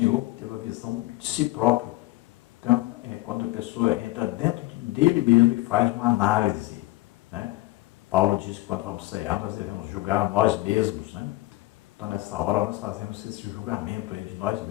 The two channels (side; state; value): right; quieter; 19.5 dB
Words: teve a visão de si próprio. Então, quando a pessoa entra dentro dele mesmo e faz uma análise, né? Paulo diz que quando vamos cear, nós devemos julgar a nós mesmos, né? Então, nessa hora, nós fazemos esse julgamento aí de nós